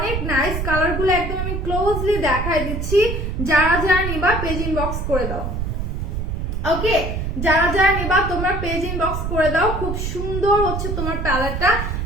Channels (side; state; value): right; noise; rumble, 3 dB below the sound